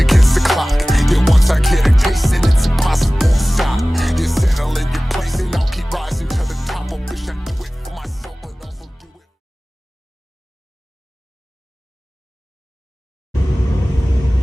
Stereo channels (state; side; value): normal; both; correlation 0.98